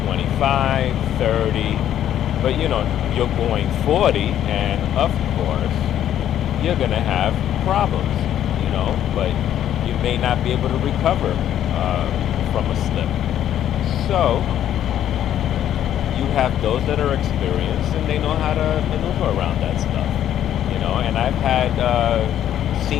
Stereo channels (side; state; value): right; quieter; 11.0 dB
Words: 25, 30, but you're going 40, and of course you're gonna have problems, but you may not be able to recover from a slip. So you have those that are experienced, and they know how to maneuver around that stuff, and I've had